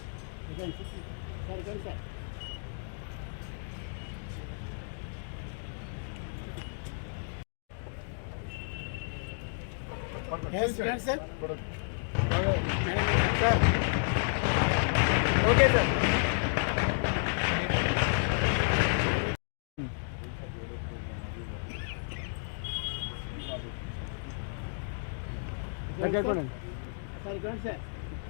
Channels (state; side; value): silent; right; digital silence